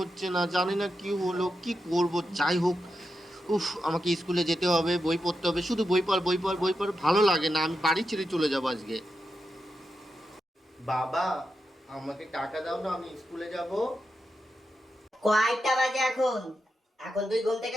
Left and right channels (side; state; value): both; normal; correlation 0.87